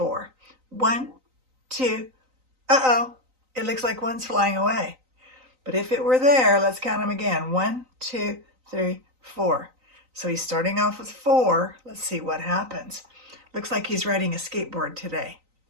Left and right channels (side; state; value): left; late; 3.9 ms